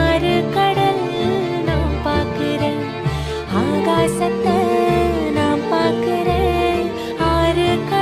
ஆறு கடல் நான் பார்க்கிறேன். ஆகாசத்தை நான் பார்க்கிறேன், ஆறு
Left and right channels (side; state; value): both; identical; correlation 1.00